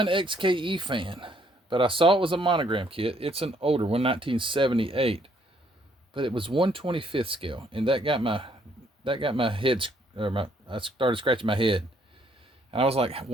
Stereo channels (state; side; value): normal; both; correlation 0.67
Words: XKE fan, but I saw it was a Monogram kit. It's an older one, 1978, but it was 1/25th scale, and that got my head, I started scratching my head. And I was like,